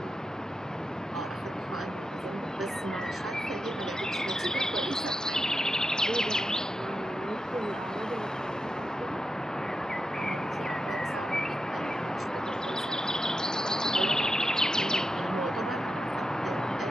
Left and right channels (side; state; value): both; normal; correlation 0.88